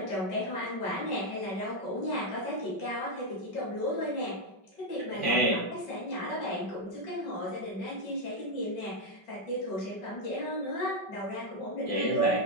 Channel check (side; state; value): right; late; 5.3 ms